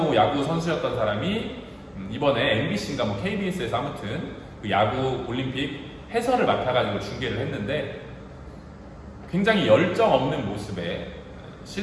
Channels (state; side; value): identical; both; correlation 1.00